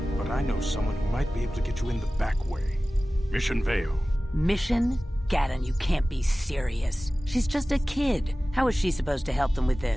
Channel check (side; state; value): both; normal; correlation 0.97